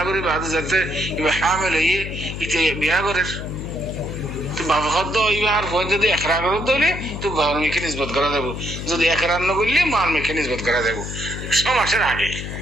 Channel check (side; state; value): left; noise; hum, 7 dB below the sound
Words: করি বাদ যাতে ইবা হামেল হইয়ে ইতে বিয়া করে তো বাবা খদ্দ ইবা আর ফোন যদি একরা করে দলে তো বাবার মিকে নিসবত করা দেব যদি একরা ন করলে মার মিকে নিসবত করা দেব সমাজের আগে